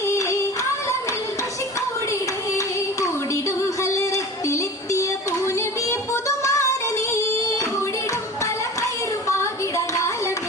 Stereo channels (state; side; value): normal; both; correlation 0.37